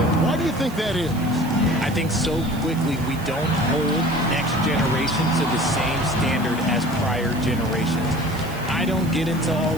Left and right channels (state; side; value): noise; right; hiss, 18 dB below the sound